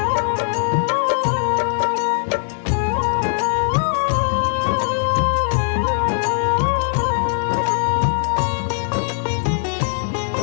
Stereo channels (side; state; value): right; silent; digital silence